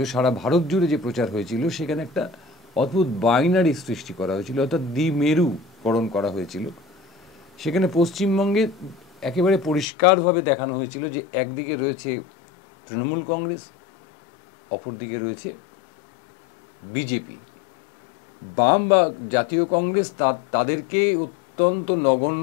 সারা ভারত জুড়ে যে প্রচার হয়েছিল, সেখানে একটা অদ্ভুত বাইনারি সৃষ্টি করা হয়েছিল, অর্থাৎ দ্বিমেরুকরণ করা হয়েছিল। সেখানে পশ্চিমবঙ্গে একেবারে পরিষ্কারভাবে দেখানো হয়েছিল যে একদিকে রয়েছে তৃণমূল কংগ্রেস, অপরদিকে রয়েছে বিজেপি। বাম বা জাতীয় কংগ্রেস তাদেরকে অত্যন্ত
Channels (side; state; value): right; drops out; at 9.9 s